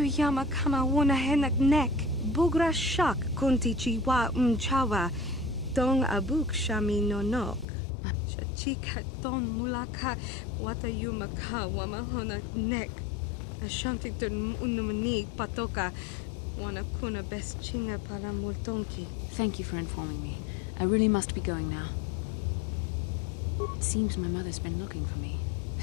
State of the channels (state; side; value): drops out; right; at 7.7 s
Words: kama wona henak nek, bugra shak kunti chiwa chawa, dong abuk shami nonok. Chachika don mulaka, watayuma ka wamahona nek, ashantington unumani patoka, wana kuna best chinga pala multonki. Thank you for informing me. I really must be going now. It seems my mother's been looking for me.